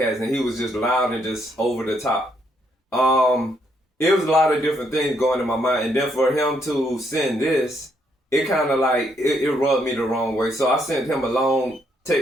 and he was just loud and just over the top. It was a lot of different things going in my mind. And then for him to send this, it kind of like, it rubbed me the wrong way. So I sent him a long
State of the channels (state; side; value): normal; both; correlation 0.73